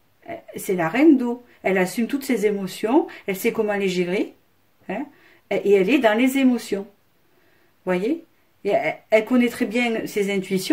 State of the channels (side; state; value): both; identical; correlation 1.00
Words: c'est la reine d'eau. Elle assume toutes ses émotions, elle sait comment les gérer, hein, et elle est dans les émotions. Vous voyez? Et elle connaît très bien ses